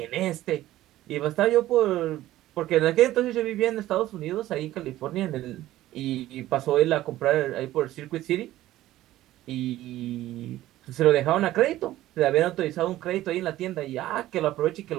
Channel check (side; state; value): left; quieter; 14.9 dB